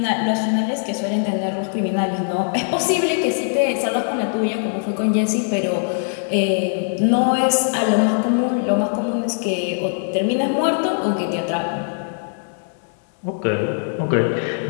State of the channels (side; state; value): right; silent; 65 dB below the other